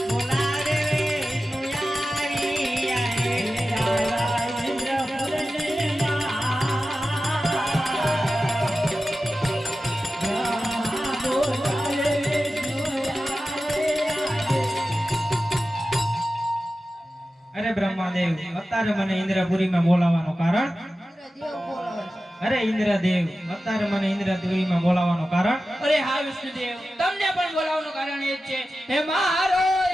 અરે બ્રહ્માદેવ અત્યારે મને ઇન્દ્રપુરીમાં બોલાવવાનું કારણ ઇન્દ્રદેવ બોલાવે છે. અરે ઇન્દ્રદેવ અત્યારે મને ઇન્દ્રપુરીમાં બોલાવવાનું કારણ અરે હા વિષ્ણુદેવ તમને પણ બોલાવવાનું કારણ એ જ છે હે મારો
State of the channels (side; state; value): both; normal; correlation 0.94